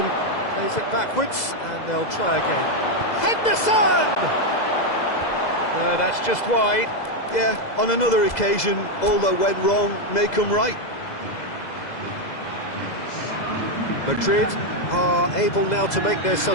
plays it backwards, and they'll try again. Henderson! No, that's just wide. Yeah, on another occasion, all that went wrong may come right. Madrid are able now to make their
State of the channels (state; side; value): late; right; 2.0 ms